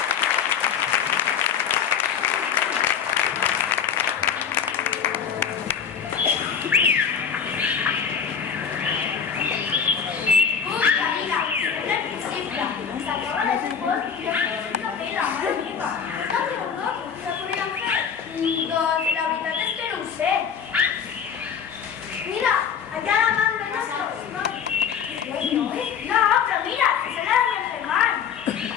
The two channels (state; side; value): quieter; right; 7.3 dB